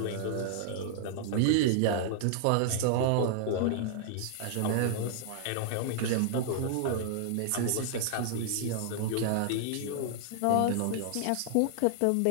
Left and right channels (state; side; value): different; both; correlation -0.01